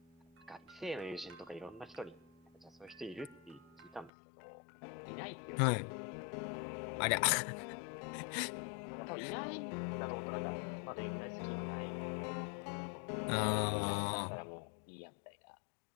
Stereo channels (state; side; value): drops out; right; at 4.1 s